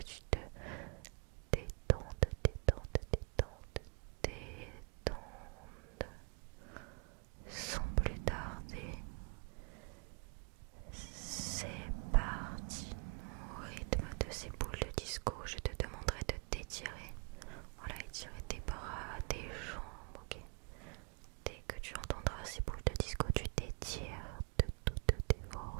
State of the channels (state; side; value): quieter; left; 36.2 dB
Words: tu te détendes, sans plus tarder. C'est parti. Au rythme de ces boules de disco, je te demanderai de t'étirer. Voilà, étirer tes bras, tes jambes, ok. Dès que tu entendras ces boules de disco, tu t'étires de toutes tes